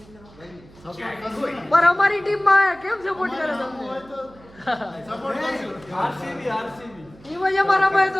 પર અમારી ટીમમાં કેમ સપોર્ટ કરે તમને? એમાં જ અમારા ભાઈ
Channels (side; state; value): right; noise; hum, 24 dB below the sound